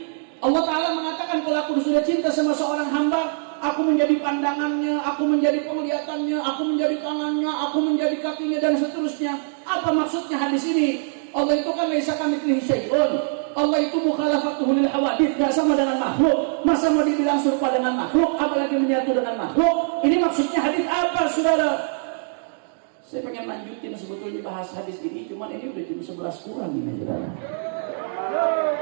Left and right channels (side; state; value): left; silent; digital silence